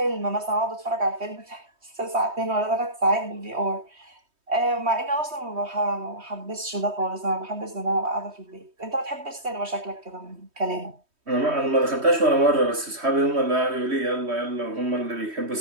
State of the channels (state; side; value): late; left; 3.2 ms